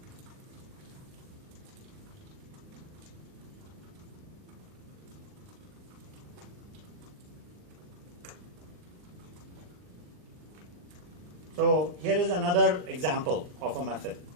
So here is another example of a method.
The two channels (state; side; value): late; left; 39 ms